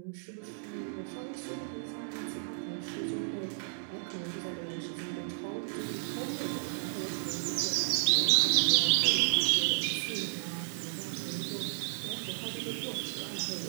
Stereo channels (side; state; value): left; silent; digital silence